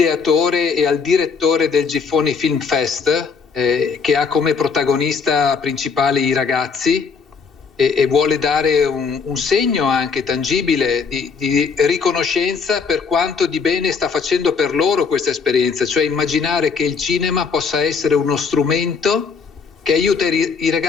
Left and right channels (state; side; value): quieter; right; 5.4 dB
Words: e al direttore del Giffoni Film Fest, che ha come protagonista principali i ragazzi e vuole dare un segno anche tangibile di riconoscenza per quanto di bene sta facendo per loro questa esperienza, cioè immaginare che il cinema possa essere uno strumento che aiuta i